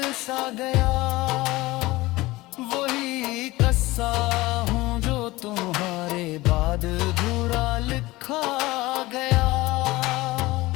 सा गया, वही कस्सा हूँ जो तुम्हारे बाद अधूरा लिखा गया।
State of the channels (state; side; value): quieter; right; 19.7 dB